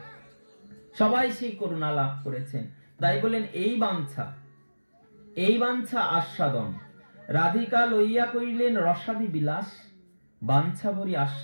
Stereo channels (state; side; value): inverted; both; correlation -1.00